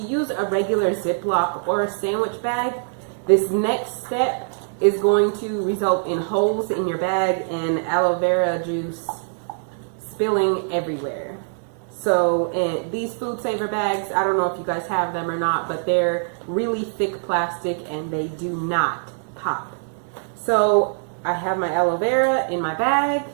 a regular Ziploc or a sandwich bag, this next step is going to result in holes in your bag and aloe vera juice spilling everywhere. So these food saver bags, I don't know if you guys have them or not, but they're really thick plastic and they do not pop. So I have my aloe vera in my bag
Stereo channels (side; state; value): left; silent; digital silence